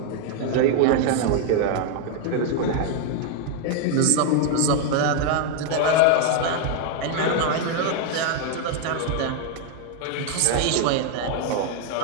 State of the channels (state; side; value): different; both; correlation 0.00